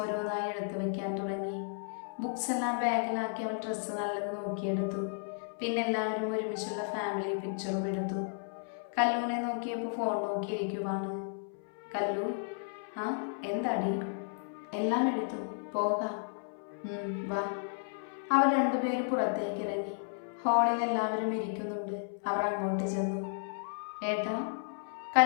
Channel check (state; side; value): silent; right; 55 dB below the other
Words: എടുത്തു വെക്കാൻ തുടങ്ങി. ബുക്സ് എല്ലാം ബാഗിലാക്കി അവൾ ഡ്രസ്സ് നല്ലത് നോക്കിയെടുത്തു. പിന്നെ എല്ലാവരും ഒരുമിച്ചുള്ള ഫാമിലി പിക്ചറും എടുത്തു. കല്ലുവിനെ നോക്കിയപ്പോൾ ഫോൺ നോക്കിയിരിക്കുവാണ്. കല്ലു, എന്താടി? എല്ലാം എടുത്തു, പോകാം. വാ. അവർ രണ്ടുപേരും പുറത്തേക്ക് ഇറങ്ങി. ഹാളിൽ എല്ലാവരും ഇരിക്കുന്നുണ്ട്. അവർ അങ്ങോട്ട് ചെന്നു. ഏട്ടാ,